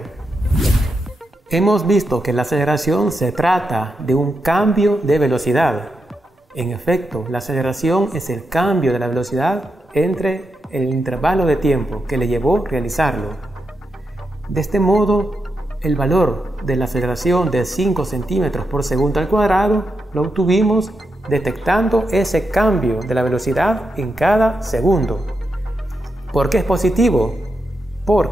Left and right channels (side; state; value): both; normal; correlation 0.85